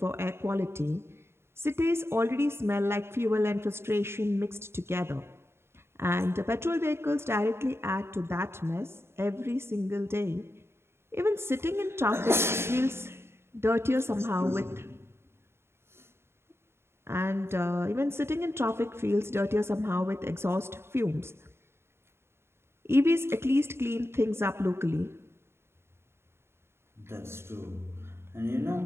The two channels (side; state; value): left; late; 0.12 ms